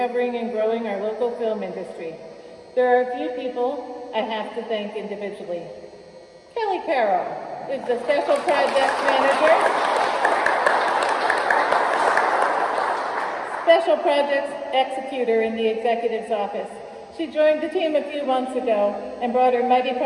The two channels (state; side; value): identical; both; correlation 1.00